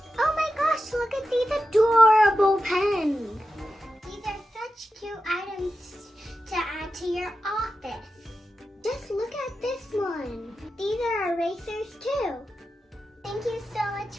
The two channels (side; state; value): both; normal; correlation 0.91